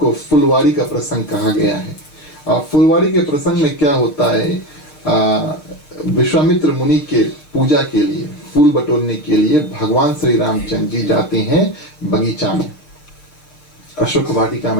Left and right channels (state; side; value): late; right; 6.7 ms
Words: फुलवाड़ी का प्रसंग कहा गया है। और फुलवाड़ी के प्रसंग में क्या होता है, विश्वामित्र मुनि के पूजा के लिए, फूल बटोरने के लिए भगवान श्री रामचंद्र जी जाते हैं बगीचा में, अशोक वाटिका